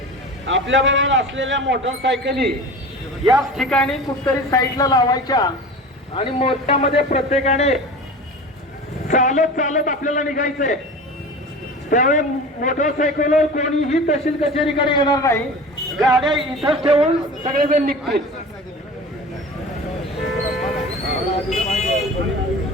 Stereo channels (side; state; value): both; normal; correlation 0.35